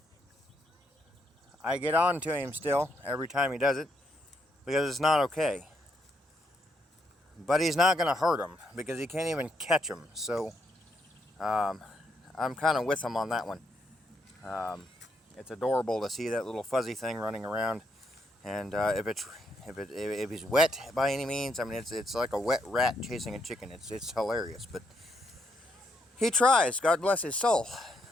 I get on to him still every time he does it, because it's not okay. But he's not going to hurt him, because he can't even catch him. So I'm kind of with him on that one. It's adorable to see that little fuzzy thing running around, and if he's wet by any means, I mean it's like a wet rat chasing a chicken. It's hilarious, but he tries. God bless his soul.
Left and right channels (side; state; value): both; normal; correlation 0.76